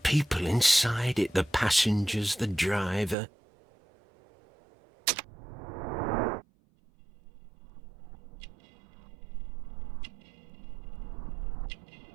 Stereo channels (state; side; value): drops out; left; at 3.2 s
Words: inside it, the passengers, the driver.